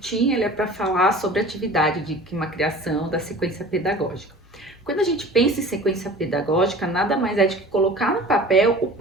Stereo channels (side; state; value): both; normal; correlation 0.42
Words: ele é para falar sobre a atividade de uma criação da sequência pedagógica. Quando a gente pensa em sequência pedagógica, nada mais é de que colocar no papel o